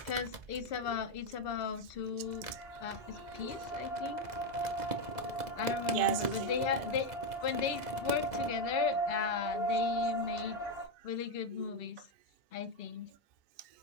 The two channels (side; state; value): left; late; 2.0 ms